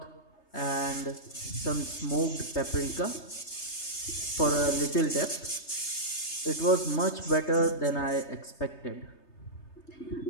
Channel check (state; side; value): late; right; 3.3 ms